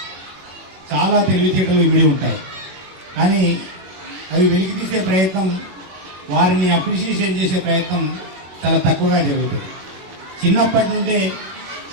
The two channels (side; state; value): left; late; 21 ms